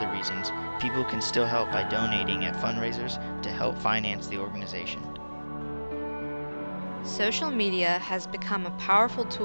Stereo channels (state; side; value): inverted; both; correlation -1.00